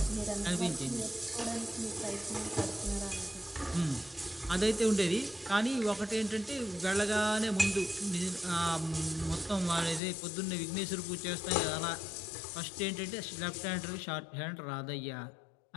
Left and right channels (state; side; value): drops out; right; at 10.0 s